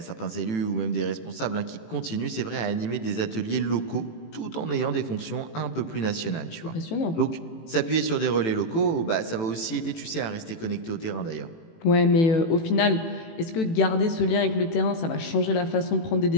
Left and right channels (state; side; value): late; right; 18 ms